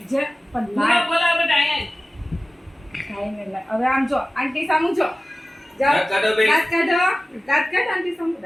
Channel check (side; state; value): both; normal; correlation 0.96